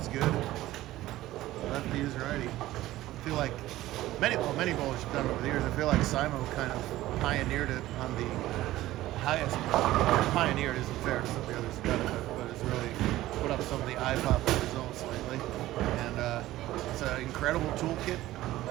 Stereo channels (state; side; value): quieter; left; 15.8 dB